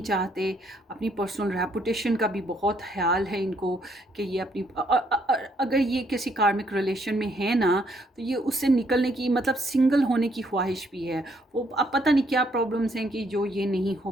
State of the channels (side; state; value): both; normal; correlation 0.70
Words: चाहते। अपनी पर्सनल रेपुटेशन का भी बहुत ख़्याल है इनको कि ये अपनी अगर ये किसी कार्मिक रिलेशन में है ना, तो ये उससे निकलने की मतलब सिंगल होने की ख्वाहिश भी है। वो अब पता नहीं क्या प्रॉब्लम्स हैं कि जो ये नहीं हो